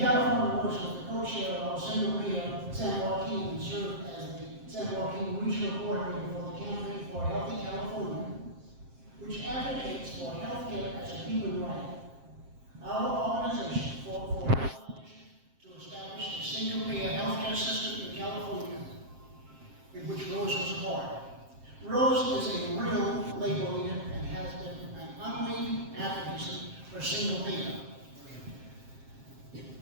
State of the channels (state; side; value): late; left; 7.5 ms